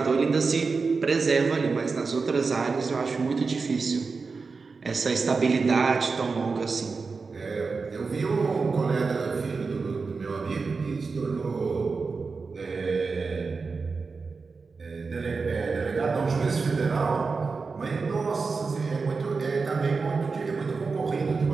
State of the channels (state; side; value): quieter; left; 4.5 dB